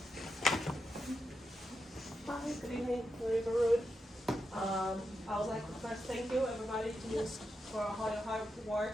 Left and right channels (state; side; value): normal; both; correlation 0.86